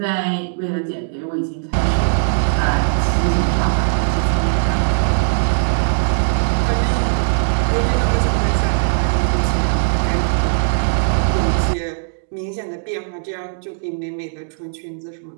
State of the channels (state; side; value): silent; left; digital silence